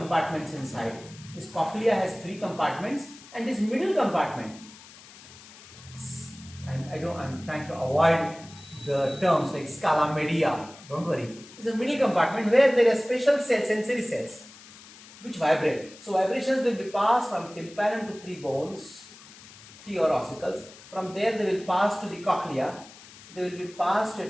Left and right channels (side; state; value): left; noise; hiss, 20 dB below the sound